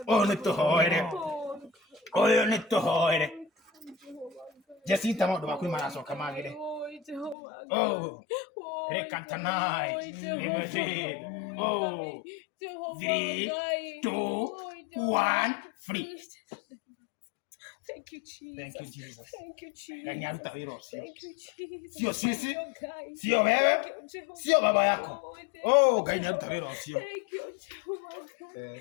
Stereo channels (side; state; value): right; drops out; at 7.4 s